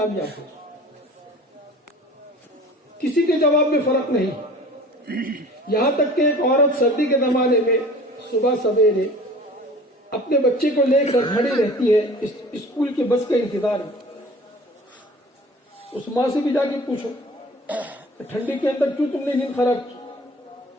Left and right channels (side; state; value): both; normal; correlation 0.44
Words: ہو۔ کسی کے جواب میں فرق نہیں، یہاں تک کہ ایک عورت سردی کے زمانے میں صبح سویرے اپنے بچے کو لے کر کھڑی رہتی ہے اسکول کے بس کا انتظار میں۔ اس ماں سے بھی جا کے پوچھو کہ ٹھنڈی کے اندر کیوں تم نے نیند خراب کی،